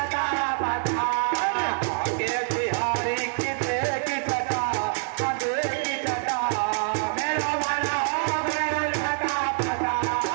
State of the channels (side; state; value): left; silent; digital silence